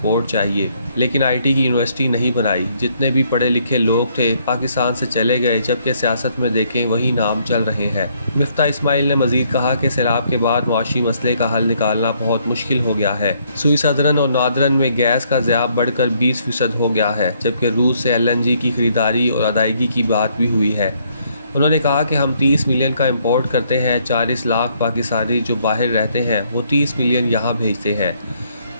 چاہیے، لیکن آئی ٹی کی یونیورسٹی نہیں بنائی۔ جتنے بھی پڑھے لکھے لوگ تھے پاکستان سے چلے گئے، جبکہ سیاست میں دیکھیں وہی نام چل رہے ہیں۔ مفتاح اسماعیل نے مزید کہا کہ سیلاب کے بعد معاشی مسئلے کا حل نکالنا بہت مشکل ہو گیا ہے۔ سوئی صدرن اور نادرن میں گیس کا ضیاع بڑھ کر 20% ہو گیا ہے، جبکہ روس سے LNG کی خریداری اور ادائیگی کی بات بھی ہوئی ہے۔ انہوں نے کہا کہ ہم 30 ملین کا امپورٹ کرتے ہیں، 40 لاکھ پاکستانی جو باہر رہتے ہیں وہ 30 ملین یہاں بھیجتے ہیں۔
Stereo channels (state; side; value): inverted; both; correlation -0.69